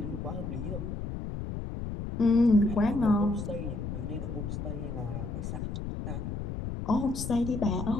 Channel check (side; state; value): left; noise; rumble, 5 dB below the sound